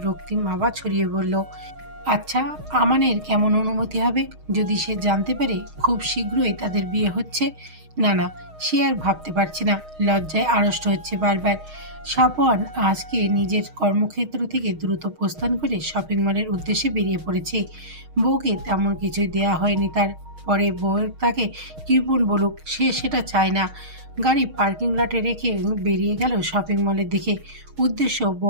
রক্তিম আভা ছড়িয়ে বলল, আচ্ছা আমানের কেমন অনুমতি হবে যদি সে জানতে পারে খুব শীঘ্রই তাদের বিয়ে হচ্ছে? না না, সে আর ভাবতে পারছে না। লজ্জায় আড়ষ্ট হচ্ছে বারবার। সাফওয়ান আজকে নিজের কর্মক্ষেত্র থেকে দ্রুত প্রস্থান করে শপিং মলের উদ্দেশ্যে বেরিয়ে পড়েছে। বউকে তেমন কিছুই দেয়া হয়নি তার। পরে বউয়ের তাকে কৃপণ বলুক, সে সেটা চায় না। গাড়ি পার্কিং লটে রেখে বেরিয়ে গেল শপিং মলের দিকে। উদ্দেশ্য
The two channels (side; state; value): left; late; 6.4 ms